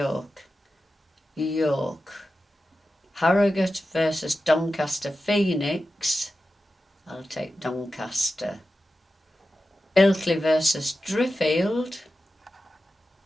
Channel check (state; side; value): normal; both; correlation 0.92